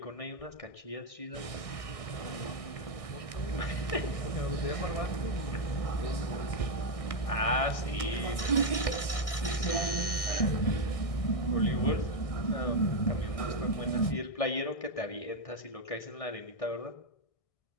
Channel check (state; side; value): late; right; 1.6 ms